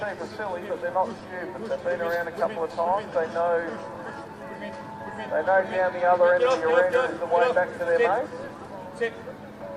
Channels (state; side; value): identical; both; correlation 1.00